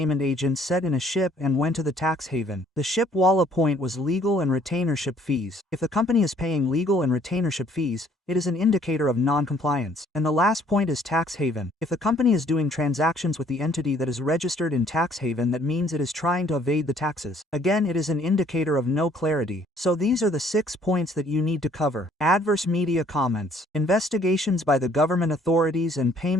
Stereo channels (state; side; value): normal; both; correlation 0.61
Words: agent set in a ship and went to the tax haven. The ship Walla point was legal and retainership fees. If the company is paying legal and retainership fees, it is an indicator of non-compliance. And the last point is tax haven. If the company is doing transactions with the entity that is registered in tax haven, that means it is trying to evade the taxes. Again, it is an indicator of no clarity. So these are the 6 points that you need to cover. Adverse media comments, investigations by the government authorities, and